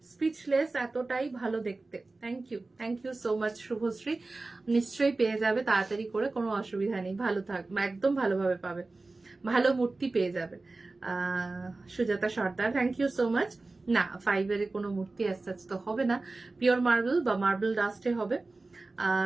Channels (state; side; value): quieter; left; 3.4 dB